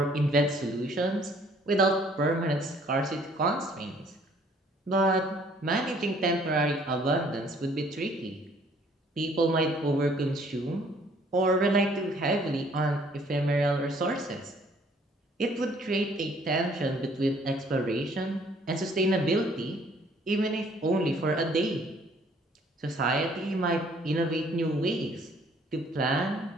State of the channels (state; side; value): normal; both; correlation 0.60